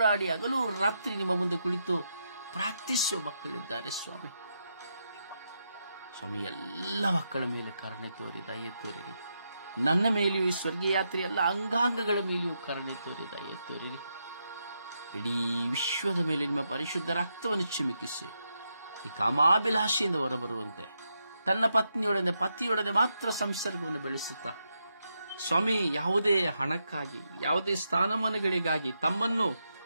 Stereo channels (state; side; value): inverted; both; correlation -0.83